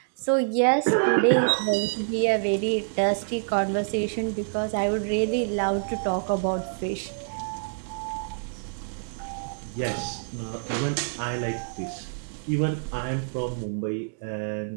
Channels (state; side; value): silent; left; digital silence